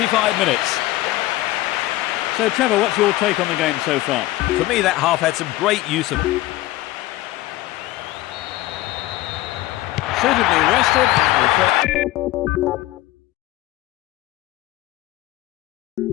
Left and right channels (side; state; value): right; quieter; 17.0 dB